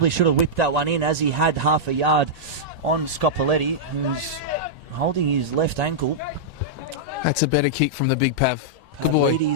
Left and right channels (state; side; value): normal; both; correlation -0.09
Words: should have whipped that one in as he had half a yard on Scopoletti, who's holding his left ankle. That's a better kick from the big Pav. Good boy.